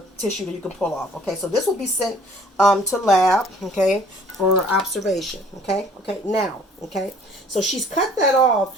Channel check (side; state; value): both; normal; correlation 0.54